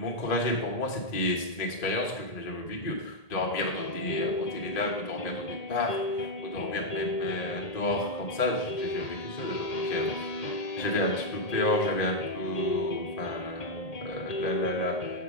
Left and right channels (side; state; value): right; late; 1.8 ms